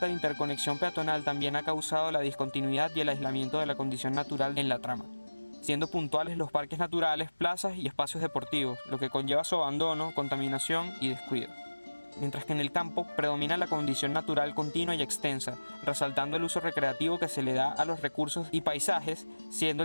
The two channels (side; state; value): both; inverted; correlation -1.00